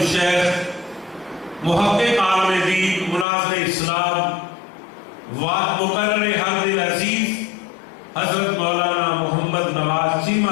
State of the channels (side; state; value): right; drops out; at 3.2 s